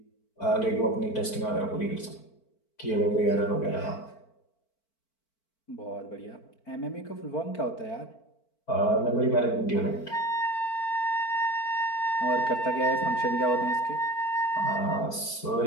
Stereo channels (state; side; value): late; right; 4.5 ms